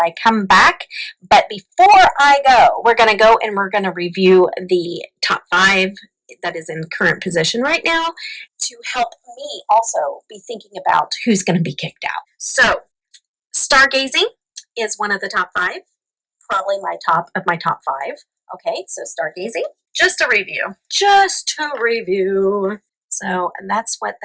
come back. But before I go, we're going to go and we're going to review the top 5 that is in current position right now to help me also be thinking about who's going to be kicked out. So stargazing is one of the top 5. Probably my top of my top 5. Okay, so stargazing. Just a review. So, and that's what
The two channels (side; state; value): both; identical; correlation 1.00